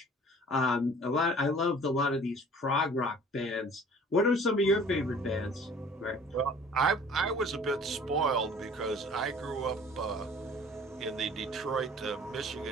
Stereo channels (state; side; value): normal; both; correlation 0.49